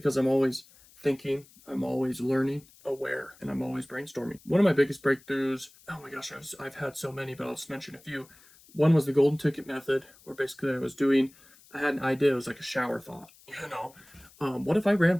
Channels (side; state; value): left; noise; hiss, 26 dB below the sound